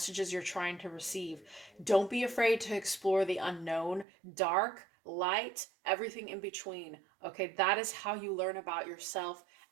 you're trying to receive. Don't be afraid to explore the unknown, dark, light, everything in between. Okay, that is how you learn about yourself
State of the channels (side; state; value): left; drops out; at 4.0 s